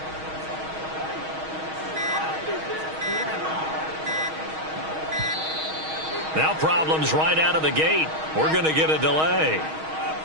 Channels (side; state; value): left; late; 6.3 ms